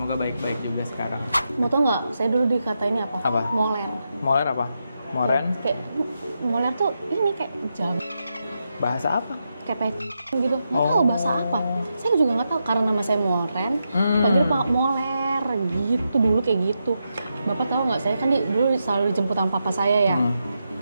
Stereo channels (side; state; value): both; inverted; correlation -0.86